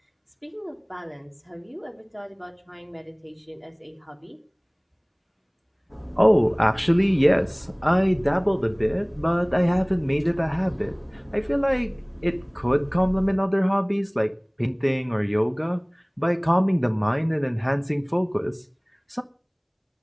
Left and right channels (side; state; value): both; identical; correlation 1.00